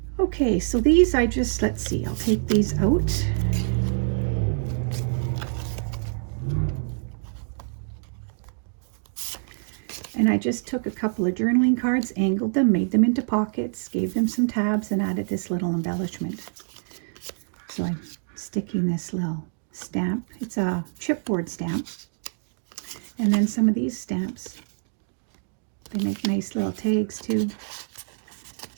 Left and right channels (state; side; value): silent; left; digital silence